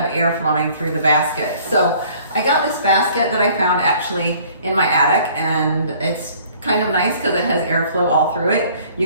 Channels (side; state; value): both; inverted; correlation -0.55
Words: air flowing through the basket. So I got this basket that I found actually in my attic, and it's kind of nice because it has airflow all through it.